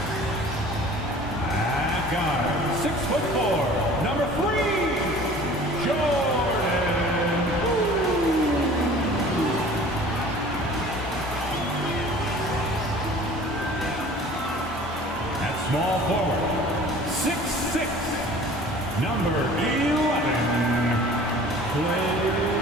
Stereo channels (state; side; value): normal; both; correlation 0.46